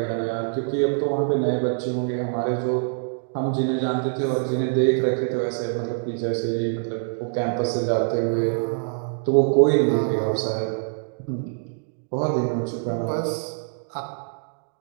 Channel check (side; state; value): left; silent; digital silence